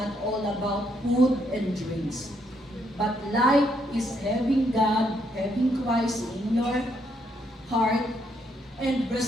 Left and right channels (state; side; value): normal; both; correlation 0.74